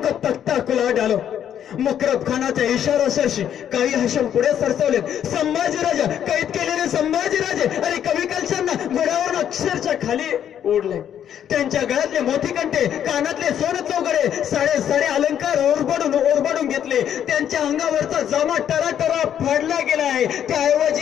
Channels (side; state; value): right; quieter; 9.7 dB